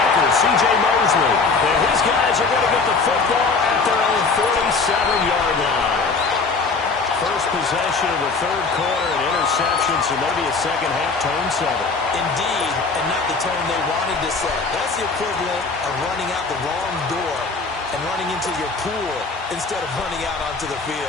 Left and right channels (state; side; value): quieter; right; 4.3 dB